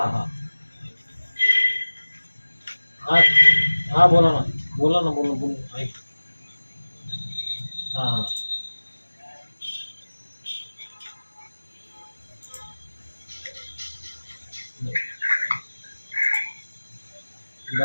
हां. हां हां बोला ना. बोला ना बोला बोला ऐक. हां हां.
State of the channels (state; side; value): inverted; both; correlation -1.00